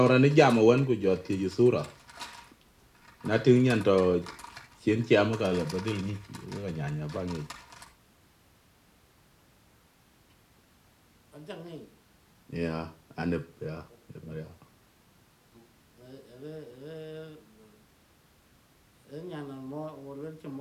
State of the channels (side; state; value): both; identical; correlation 1.00